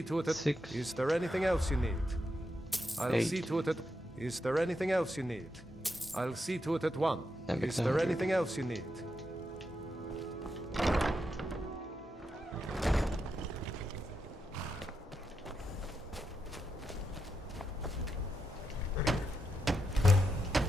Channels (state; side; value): normal; both; correlation 0.85